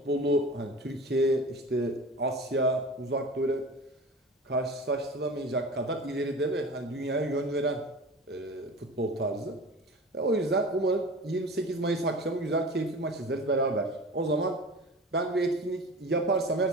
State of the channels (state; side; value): normal; both; correlation 0.36